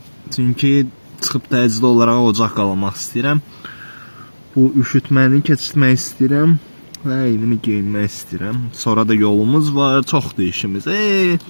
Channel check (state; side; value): inverted; both; correlation -1.00